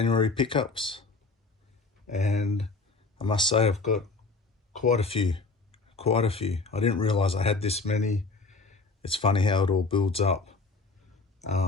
pickups, and I must say I've got quite a few. I didn't realize I had this many. It's funny how it all builds up.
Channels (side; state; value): right; quieter; 3.8 dB